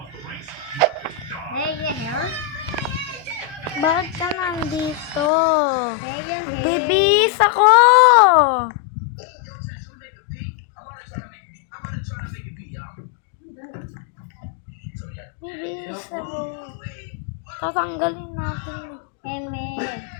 Hey, yeah. Bakit ka nandito? Hey, yeah. Bibis ako! Bibis ako. Tatanggalin natin. Eme.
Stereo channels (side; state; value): right; drops out; at 5.3 s